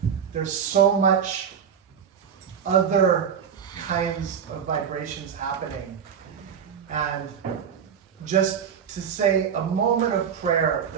there's so much other kinds of vibrations happening. And just to say a moment of prayer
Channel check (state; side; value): quieter; left; 7.7 dB